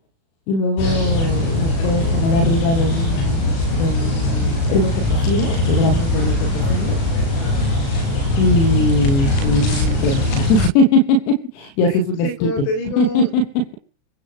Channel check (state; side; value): late; right; 36 ms